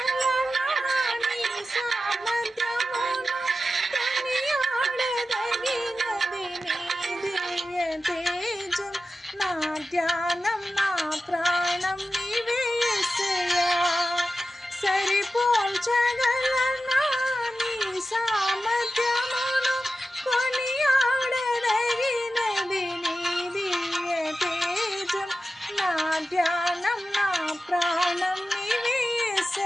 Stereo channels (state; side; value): normal; both; correlation 0.93